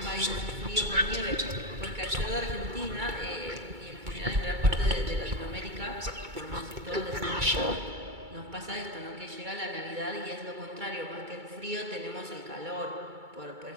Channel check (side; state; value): left; late; 2.3 ms